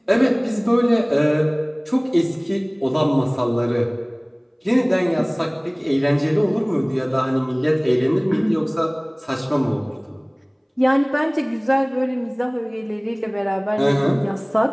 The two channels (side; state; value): both; identical; correlation 1.00